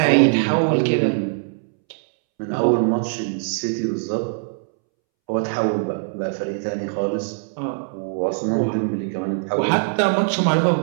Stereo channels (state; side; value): silent; left; 64 dB below the other